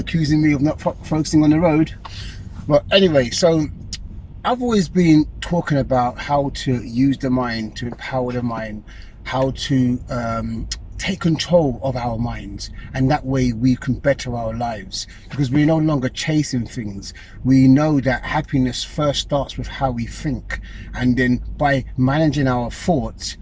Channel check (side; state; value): both; identical; correlation 1.00